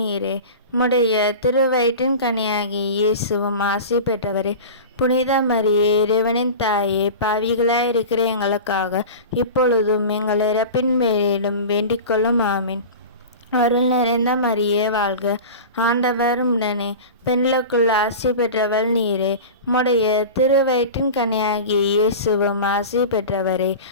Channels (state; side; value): inverted; both; correlation -0.32